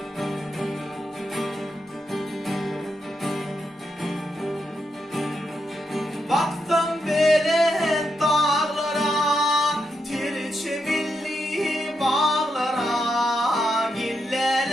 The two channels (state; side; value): normal; both; correlation 0.84